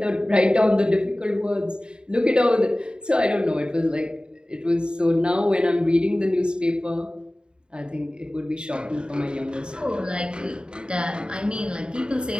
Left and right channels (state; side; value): late; left; 0.050 ms